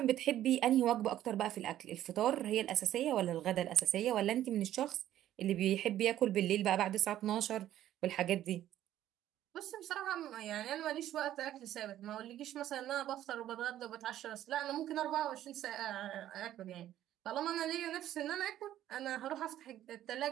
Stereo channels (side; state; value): left; quieter; 12.5 dB